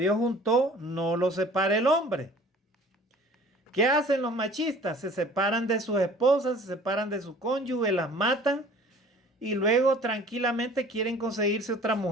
juntó, no lo separe el hombre. ¿Qué hacen los machistas? Se separan de sus esposas, se separan de su cónyuge, las matan y luego tranquilamente quieren conseguirse otra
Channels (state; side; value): normal; both; correlation 0.48